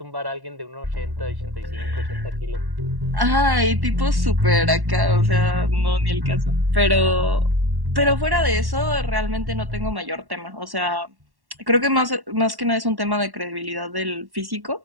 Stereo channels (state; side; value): late; left; 1.1 ms